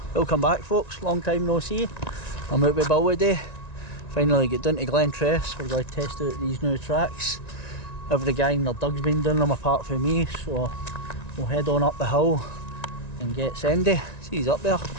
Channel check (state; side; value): late; right; 1.9 ms